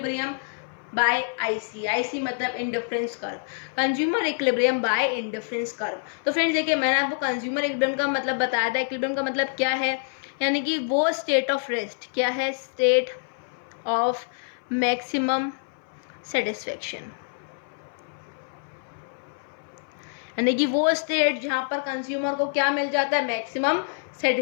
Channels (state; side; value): silent; right; 56 dB below the other